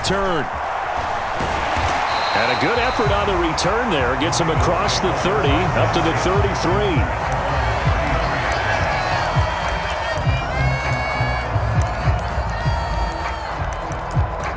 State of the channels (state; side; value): identical; both; correlation 1.00